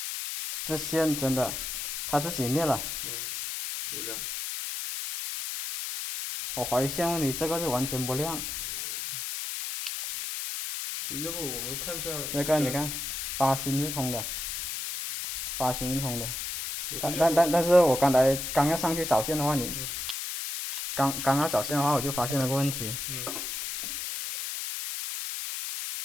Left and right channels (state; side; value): noise; left; hiss, 4 dB below the sound